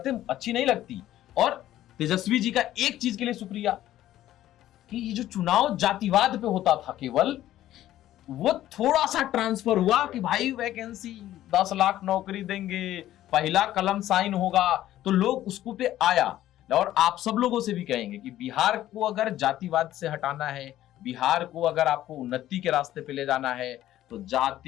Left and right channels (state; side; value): quieter; right; 13.4 dB